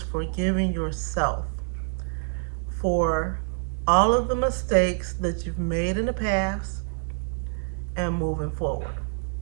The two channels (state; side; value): silent; left; 61 dB below the other